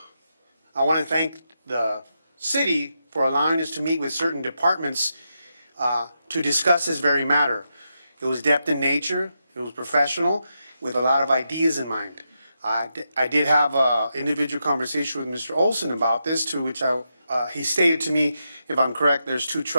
I want to thank the city for allowing us to meet with certain departments to discuss this very matter. It was depth in nature, it was professional, with a lot of ideas in mind. I did have an individual conversation with Mr. Olson about this, to which he stated to me, if I'm correct, there's 2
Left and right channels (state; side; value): inverted; both; correlation -0.85